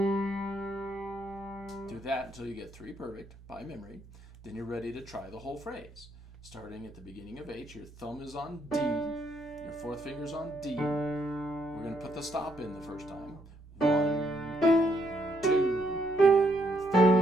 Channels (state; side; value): normal; both; correlation 0.73